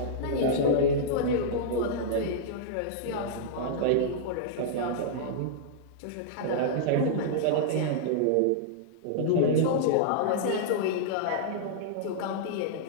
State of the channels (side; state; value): both; different; correlation -0.02